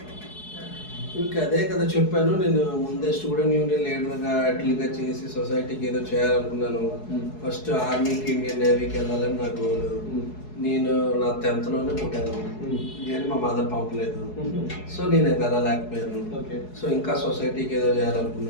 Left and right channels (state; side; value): late; right; 4.7 ms